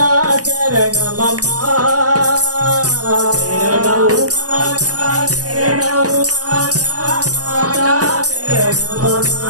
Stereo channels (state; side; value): late; left; 0.67 ms